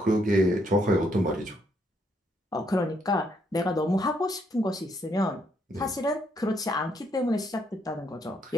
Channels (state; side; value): normal; both; correlation 0.73